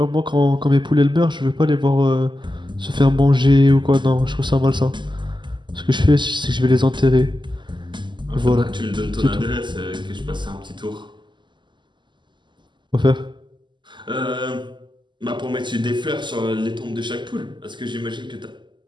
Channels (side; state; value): left; late; 0.22 ms